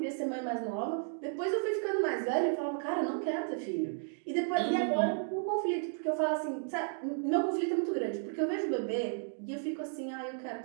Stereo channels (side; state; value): left; silent; digital silence